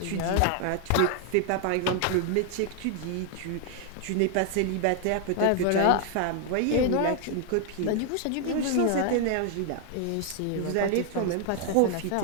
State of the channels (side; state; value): both; different; correlation 0.00